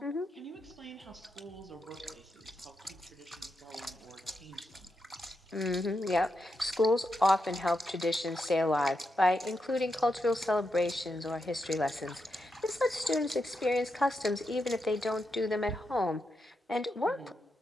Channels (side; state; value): both; normal; correlation 0.85